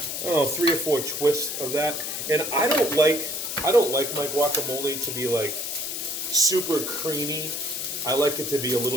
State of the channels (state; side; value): noise; left; hiss, 4 dB below the sound